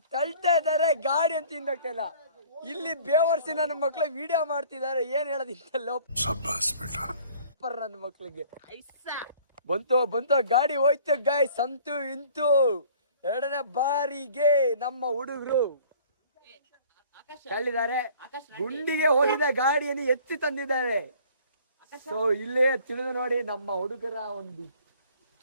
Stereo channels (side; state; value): both; inverted; correlation -0.52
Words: ತಳ್ತಾ ಇದ್ದಾರೆ ಗಾಡಿ ಅಂತ ಹಿಂದೋಗ್ತಾ ಇಲ್ಲ. ಇಲ್ಲಿ ಬೇವರ್ಸಿ ನನ್ನ ಮಕ್ಳು ವಿಡಿಯೋ ಮಾಡ್ತಿದ್ದಾರೆ. ಏನ್ ಹೇಳೋದಿಲ್ಲ ನನ್ನ ಮಕ್ಳಿಗೆ. ಬಂತು ಗಾಡಿ ಹೋಯ್ತು ಗಾಯ್ಸ್. ಅಂತೂ ಇಂತೂ ಎರಡನೇ ಬಾರಿಗೆ ನಮ್ಮ ಹುಡುಗರು ತಳ್ಳಿದ್ದಾರೆ. ಗುಂಡಿಗೆ ಹೋಗಿದ ಗಾಡಿಯನ್ನು ಎತ್ತಿ ತಂದಿದ್ದಾರೆ. ಸೊ ಇಲ್ಲೇ ತಿಳಿದು ನೋಡಿ ನಮ್ಮ ಹುಡುಗರ ಒಂದು